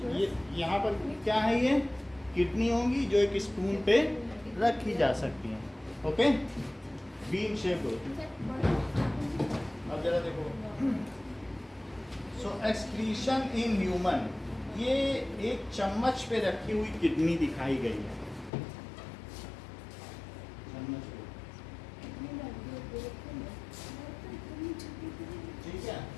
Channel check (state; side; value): drops out; right; at 18.5 s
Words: यहाँ पर क्या है, ये किडनी होंगी जो एक स्पून पे रखी जा सकती हैं, ओके, बीन शेप होती है। अब जरा देखो, सो एक्सक्रीशन इन ह्यूमन, ये एक चम्मच पे रखी हुई किडनी दिखाई गई है, चम्मच पे, ठीक है।